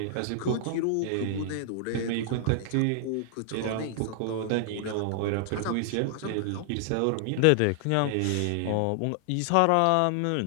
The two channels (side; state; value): both; different; correlation -0.01